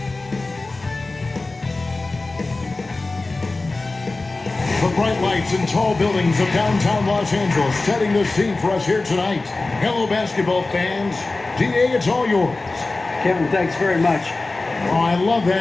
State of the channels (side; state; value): right; quieter; 3.3 dB